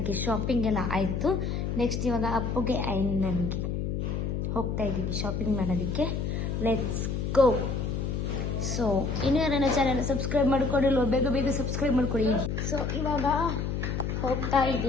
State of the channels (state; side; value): noise; left; hum, 1 dB below the sound